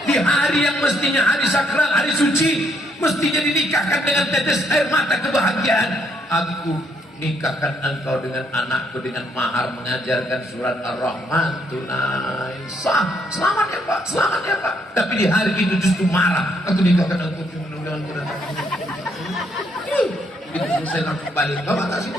Di hari yang mestinya hari sakral, hari suci, mestinya dinikahkan dengan tetes air mata kebahagiaan. Aku nikahkan engkau dengan anakku dengan mahar mengajarkan surat Ar-Rahman tunai. Sah, selamat ya Pak, selamat ya Pak. Tapi di hari itu justru marah. Aku nikahkan engkau dengan itu selesai langsung balik. Bapak tak situ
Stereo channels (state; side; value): normal; both; correlation 0.71